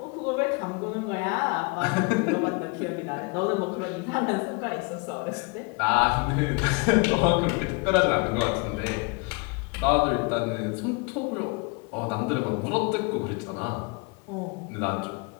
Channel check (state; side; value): quieter; right; 30.7 dB